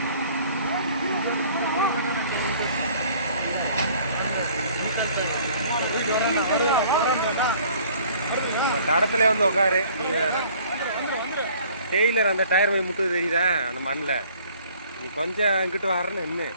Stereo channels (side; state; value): both; inverted; correlation -0.54